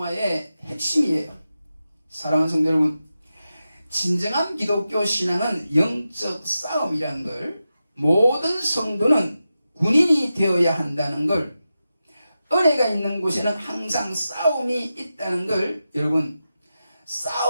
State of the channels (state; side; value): inverted; both; correlation -0.91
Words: 핵심이에요. 사랑하는 성도 여러분, 진정한 기독교 신앙은 영적 싸움이라는 걸, 모든 성도는 군인이 되어야 한다는 걸, 은혜가 있는 곳에는 항상 싸움이 있다는 걸, 여러분,